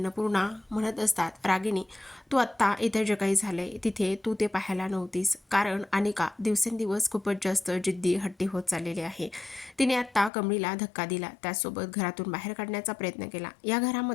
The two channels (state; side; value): drops out; right; at 10.3 s